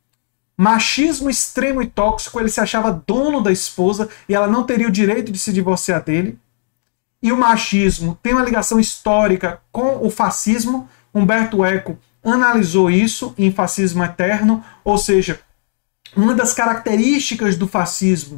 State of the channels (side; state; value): right; silent; 69 dB below the other